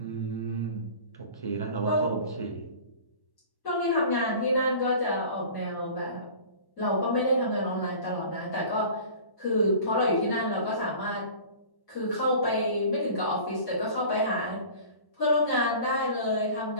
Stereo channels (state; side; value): late; right; 1.1 ms